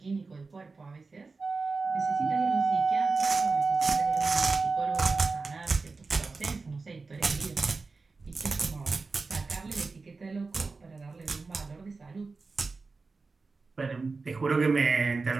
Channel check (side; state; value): left; quieter; 4.1 dB